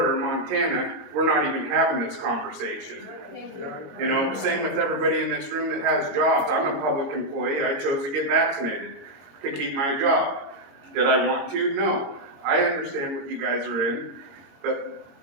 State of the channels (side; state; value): left; late; 22 ms